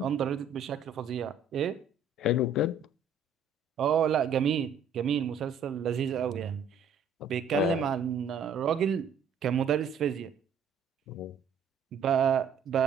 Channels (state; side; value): quieter; left; 4.8 dB